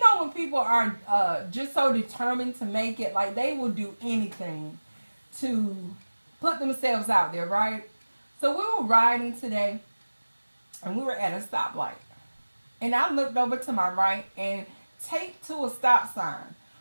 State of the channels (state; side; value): inverted; both; correlation -1.00